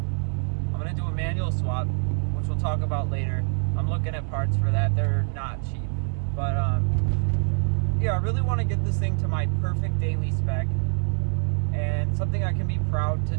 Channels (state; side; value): silent; left; 62 dB below the other